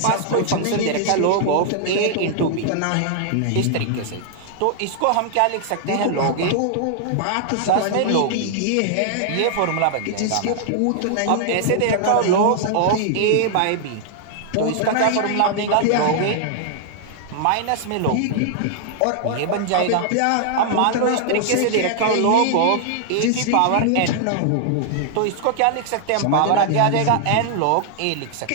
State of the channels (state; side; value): different; both; correlation -0.01